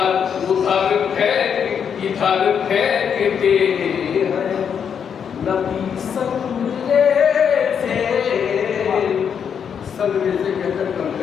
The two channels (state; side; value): quieter; right; 7.5 dB